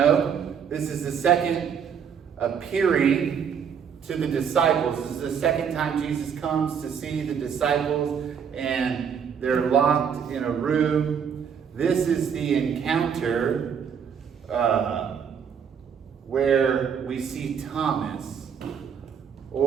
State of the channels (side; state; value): left; quieter; 7.3 dB